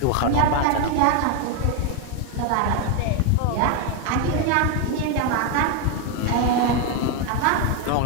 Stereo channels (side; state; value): both; different; correlation 0.01